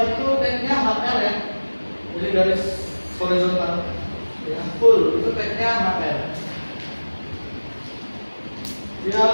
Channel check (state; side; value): inverted; both; correlation -1.00